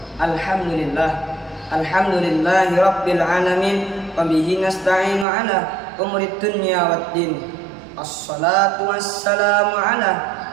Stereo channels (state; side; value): drops out; left; at 5.2 s